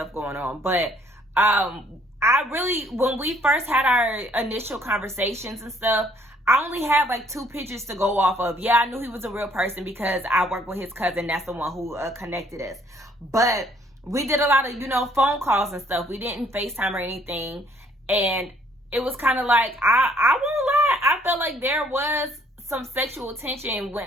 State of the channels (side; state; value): both; normal; correlation 0.63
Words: going on. But I really, when we first had our initial conversations and stuff, I only had like 2 pictures to go off of. Yeah, I knew he was a real person because I worked with his cousin. That's the one who connected us. But we did a lot of, you know, phone calls and stuff. We didn't FaceTime or anything. And it was kind of like, I won't lie, I felt like there was some sexual tension